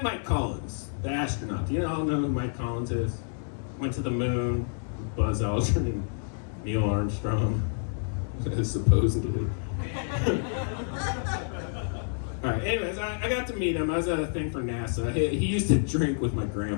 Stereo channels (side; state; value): right; silent; digital silence